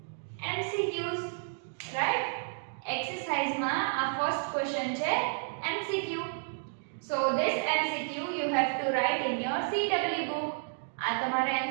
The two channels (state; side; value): silent; left; digital silence